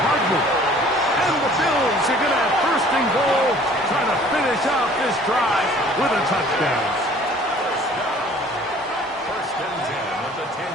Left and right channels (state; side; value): normal; both; correlation 0.52